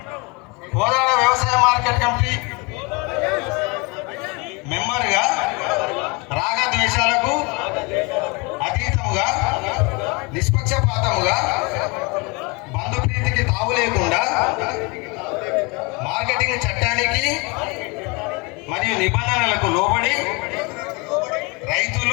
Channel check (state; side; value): quieter; right; 28.8 dB